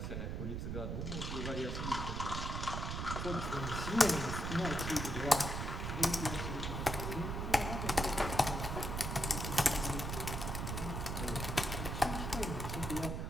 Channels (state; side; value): noise; right; rumble, 3 dB below the sound